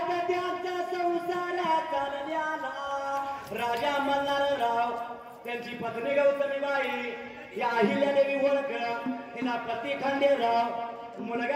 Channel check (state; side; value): identical; both; correlation 1.00